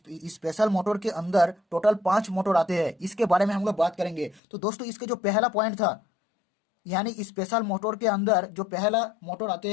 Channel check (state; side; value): drops out; right; at 4.4 s